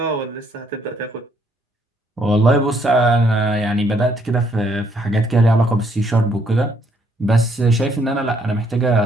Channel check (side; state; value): both; normal; correlation 0.69